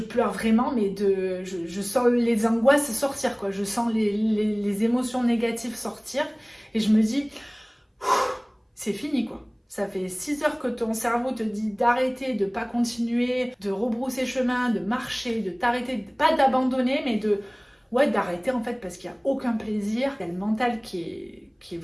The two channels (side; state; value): both; identical; correlation 1.00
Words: vraiment, mais je sens les angoisses sortir, quoi. Je sens les émotions négatives sortir et je me dis, c'est fini quoi. Ça fait 6 heures que ton cerveau te dit d'arrêter, de pas continuer, de rebrousser chemin, de marcher, de t'arrêter, pas d'abandonner, mais d'arrêter en fait parce qu'il n'y a aucun plaisir. Il y a le mental qui est